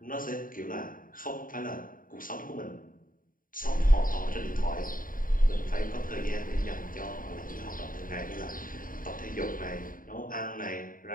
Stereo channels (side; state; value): right; late; 0.40 ms